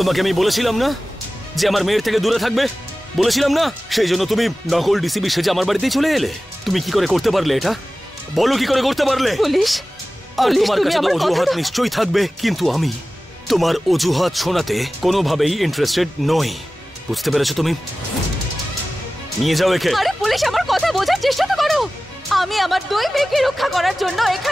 আমি বলেছিলাম না যে আমার মেয়ের থেকে দূরে থাকবে, বলেছিলাম না? সেই জন্য তুমি নকল ডিসিবি সেজে আমার বাড়িতেই চলে এলে। তুমি কি করে করতে পারলে এটা? বলো কি করে করতে পারলে? পুলিশ, আর পুলিশ, তোমার তুমি কাছে তো আমার অজুহাত কথাটা- নিশ্চয়ই থাকবে, কিন্তু আমি তোমার অজুহাত শোনাতে কোনোভাবেই ইন্টারেস্টেড নই। বুঝতে পেরেছো তুমি? নিয়ে যাও একে। আরে পুলিশ, আমার কথা বোঝার চেষ্টা তো করো। আমি আমার দুই মেয়েকে রক্ষা করার জন্য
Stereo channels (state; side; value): normal; both; correlation 0.96